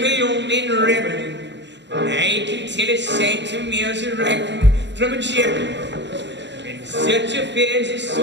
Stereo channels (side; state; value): left; late; 0.52 ms